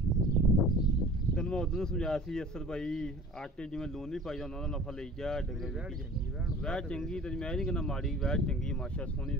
ਤੈਨੂੰ ਮੈਂ ਉਦੋਂ ਸਮਝਾਇਆ ਸੀ ਅਸਰ ਭਾਈ ਆਟੇ ਜਿਵੇਂ ਲੂਣ ਨਹੀਂ ਪਾਈਦਾ ਉਹਨਾਂ ਦਾ ਨਫਾ ਲਈ ਜਾ ਡੰਗਰ ਵੈੜ ਚੰਗੀ ਵੈੜ ਚੰਗੀ ਤੇ ਮੈਂ ਨਹੀਂ ਕਹਿੰਦਾ ਮਾੜੀ ਵੈੜ ਚੰਗੀ ਮਾਸ਼ਾ ਸੋਹਣੀ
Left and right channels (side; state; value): both; normal; correlation 0.43